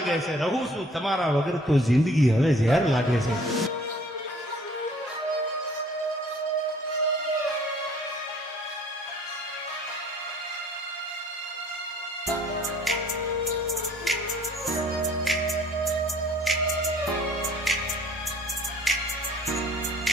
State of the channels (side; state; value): both; normal; correlation 0.55